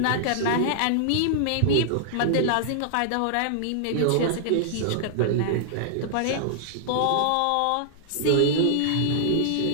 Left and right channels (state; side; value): different; both; correlation -0.01